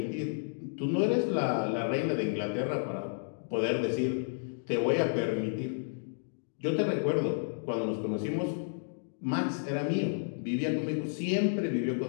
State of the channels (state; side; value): silent; right; digital silence